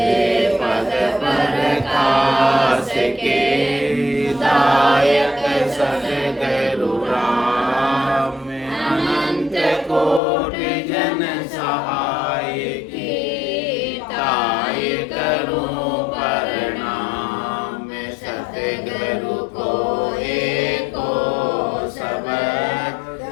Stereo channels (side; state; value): right; drops out; at 10.2 s